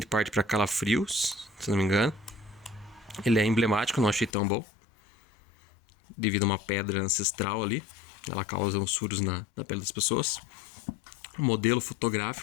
parte para Calafrios, se não me engano. Ele é emblemático, não achei tão bom, devido a uma pedra ancestral ali. Ela causa uns furos na pele das pessoas. Um modelo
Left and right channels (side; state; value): right; drops out; at 4.3 s